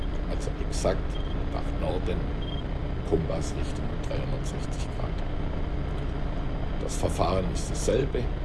also exakt nach Norden, Kompassrichtung 360 Grad. Das Verfahren ist dasselbe,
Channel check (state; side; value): identical; both; correlation 1.00